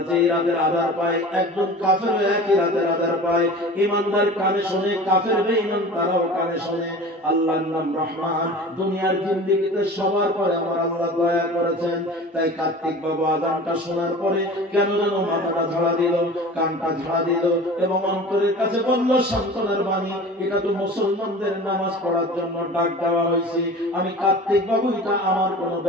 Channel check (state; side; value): normal; both; correlation 0.38